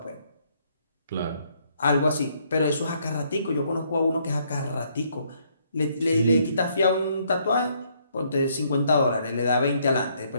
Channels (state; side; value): inverted; both; correlation -0.70